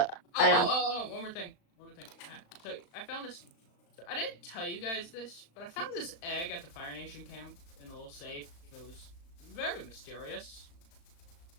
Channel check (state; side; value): late; right; 36 ms